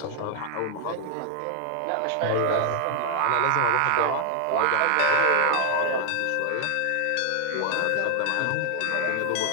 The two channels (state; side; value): different; both; correlation 0.00